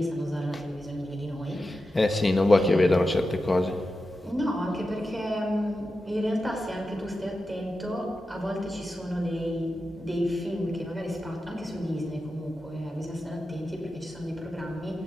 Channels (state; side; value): normal; both; correlation 0.91